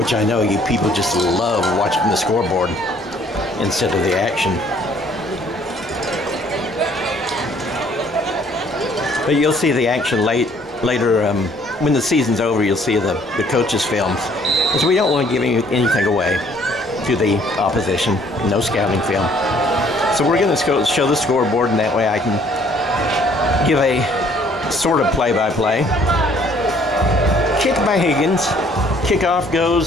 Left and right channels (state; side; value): normal; both; correlation 0.60